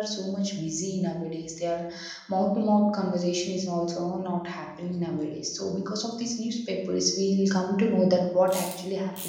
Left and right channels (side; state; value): both; identical; correlation 1.00